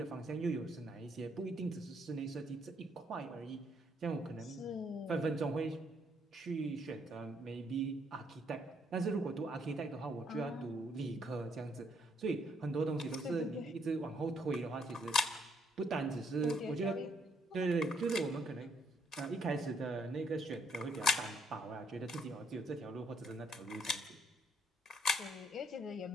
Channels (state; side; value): normal; both; correlation 0.70